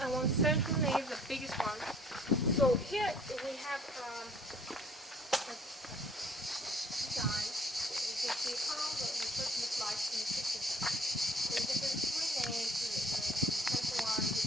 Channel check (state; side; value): normal; both; correlation 0.56